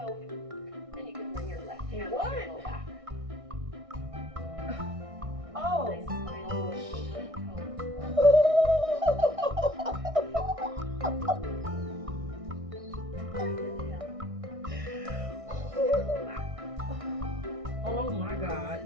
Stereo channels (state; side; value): late; left; 1.6 ms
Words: and you can bring your left hand to your low back. Oh. Nice spinal rotation toe. Oh my God.